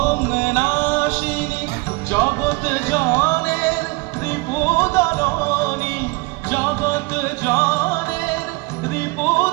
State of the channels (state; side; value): quieter; left; 24.7 dB